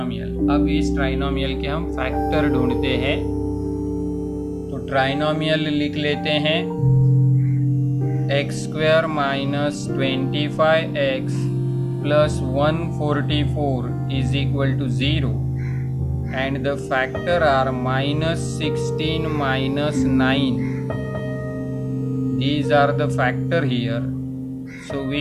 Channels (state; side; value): identical; both; correlation 1.00